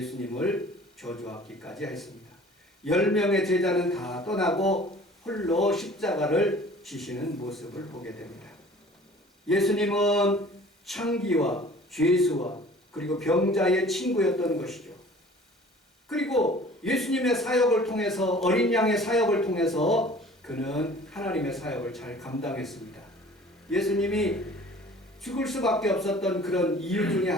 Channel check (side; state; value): both; normal; correlation 0.48